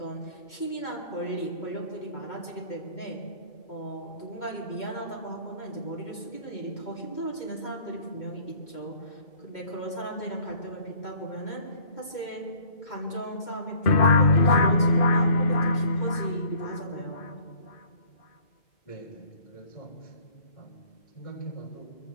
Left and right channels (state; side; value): late; right; 2.2 ms